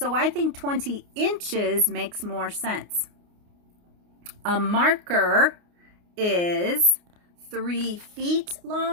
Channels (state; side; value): late; left; 29 ms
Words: I think 20 inches makes more sense. A marker is 3 feet